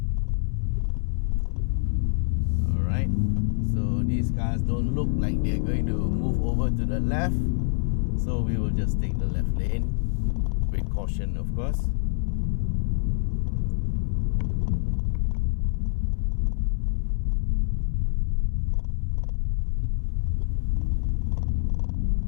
Alright, so these cars don't look like they're going to move over to the left, so we will just take the left lane with caution, of course.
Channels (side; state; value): right; silent; 61 dB below the other